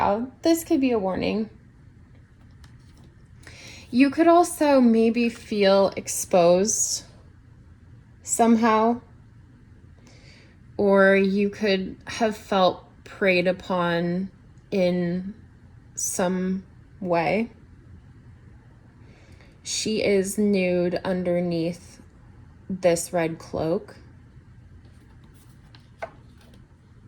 This could be a warning. You could also maybe feel exposed somehow, or you could have felt preyed upon in some way. She is nude underneath this red cloak.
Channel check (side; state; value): both; identical; correlation 1.00